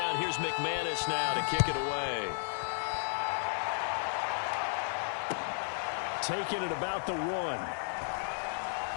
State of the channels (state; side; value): silent; right; digital silence